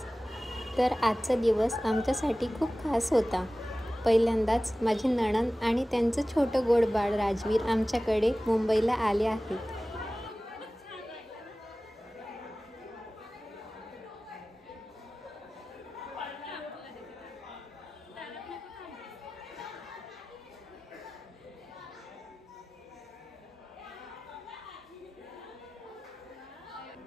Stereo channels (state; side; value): normal; both; correlation 0.97